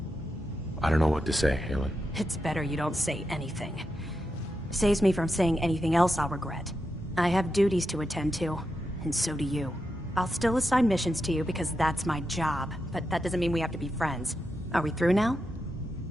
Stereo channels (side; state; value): both; normal; correlation 0.87